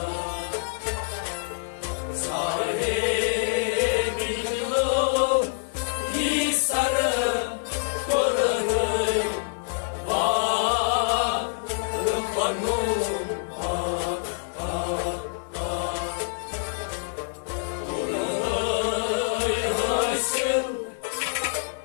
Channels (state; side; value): silent; right; 61 dB below the other